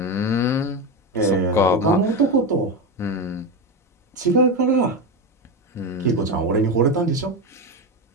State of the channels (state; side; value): normal; both; correlation 0.16